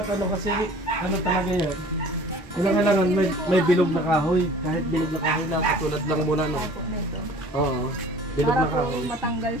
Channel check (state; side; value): normal; both; correlation 0.47